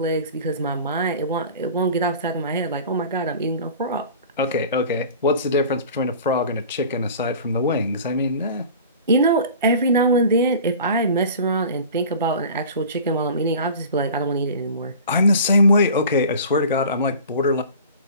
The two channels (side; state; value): both; inverted; correlation -0.40